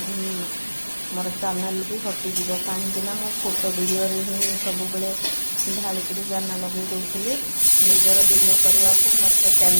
मोर चैनल भी हटिज कहीं मो फोटो वीडियो ही सब बेले ढालिक जाना लगे दूसरी। निजर वीडियो करने को मत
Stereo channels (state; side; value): inverted; both; correlation -1.00